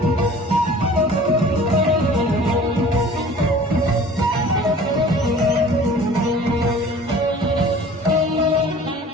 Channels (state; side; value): normal; both; correlation 0.46